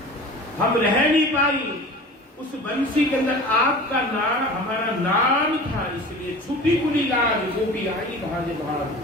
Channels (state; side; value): normal; both; correlation 0.38